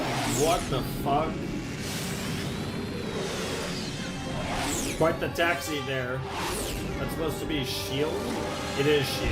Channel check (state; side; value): identical; both; correlation 1.00